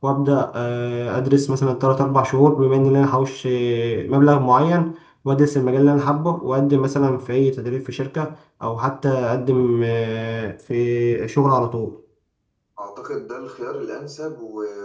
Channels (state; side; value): identical; both; correlation 1.00